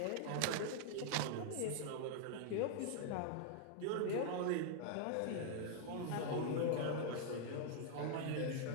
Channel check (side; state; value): both; different; correlation 0.00